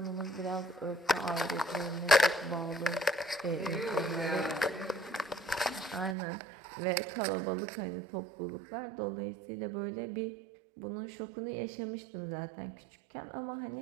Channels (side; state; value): left; drops out; at 6.2 s